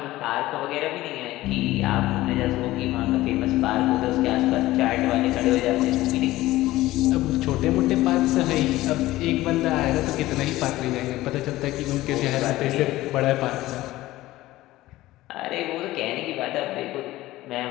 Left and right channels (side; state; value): right; quieter; 16.9 dB